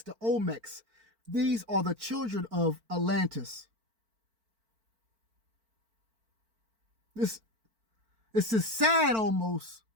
the Olmecs, these are the children of Atlantis. This is sad almost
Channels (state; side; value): late; left; 4.5 ms